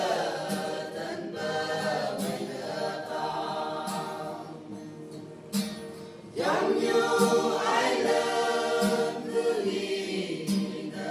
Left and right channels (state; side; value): identical; both; correlation 1.00